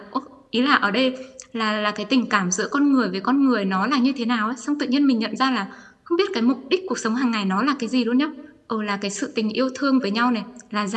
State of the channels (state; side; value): identical; both; correlation 1.00